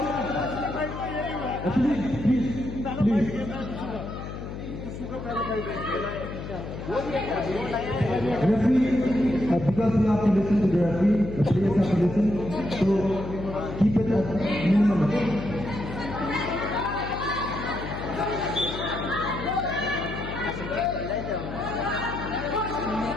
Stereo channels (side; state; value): left; noise; hum, 9 dB below the sound